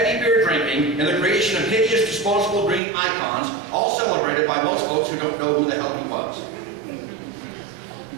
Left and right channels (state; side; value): drops out; left; at 2.8 s